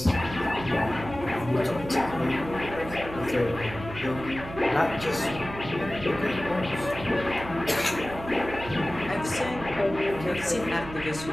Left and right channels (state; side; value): noise; right; hum, 12 dB below the sound